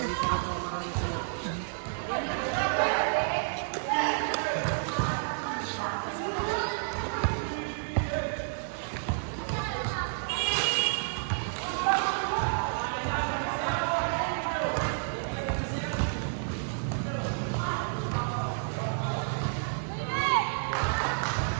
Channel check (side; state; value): left; silent; digital silence